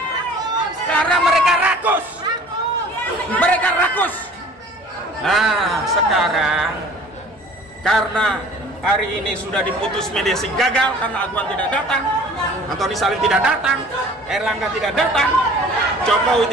Karena mereka rakus. Mereka rakus. Nah, sekarang karena hari ini sudah diputus mediasi gagal karena Aguan tidak datang, Antoni Salim tidak datang, Erlangga tidak datang,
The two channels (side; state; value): both; normal; correlation 0.48